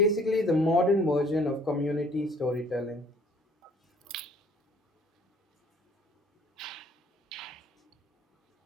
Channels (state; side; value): normal; both; correlation 0.56